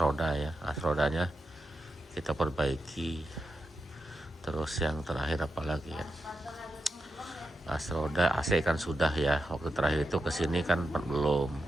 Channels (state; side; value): normal; both; correlation 0.87